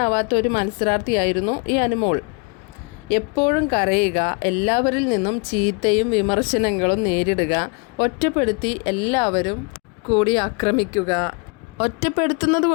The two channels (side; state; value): right; quieter; 32.8 dB